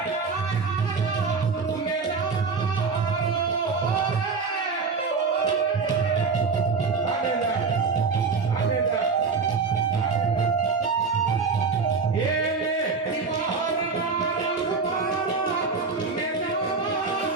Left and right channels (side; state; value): left; quieter; 4.8 dB